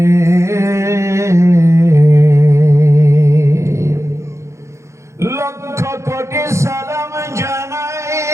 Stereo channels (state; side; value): late; left; 0.14 ms